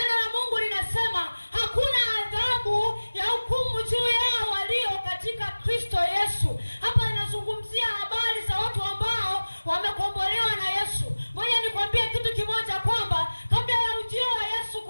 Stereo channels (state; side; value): inverted; both; correlation -1.00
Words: la Mungu linasema hakuna adhabu ya hukumu juu yao walio katika Kristo Yesu. Hapa inazungumzia habari za watu ambao wamekombolewa na Yesu. Ngoja nikwambie kitu kimoja, kwamba kabla ya ujio wa Yesu